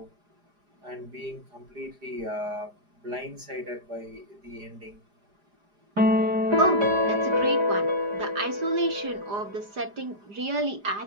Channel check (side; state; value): left; late; 4.9 ms